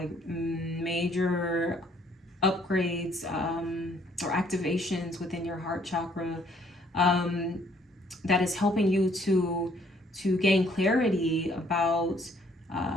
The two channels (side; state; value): both; normal; correlation 0.64